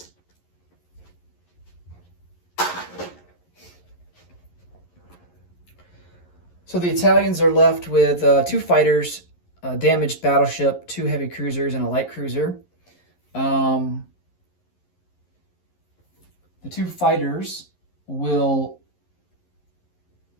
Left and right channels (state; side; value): late; right; 11 ms